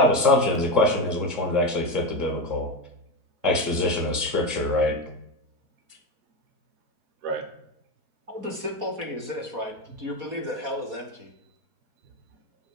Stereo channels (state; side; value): late; left; 3.8 ms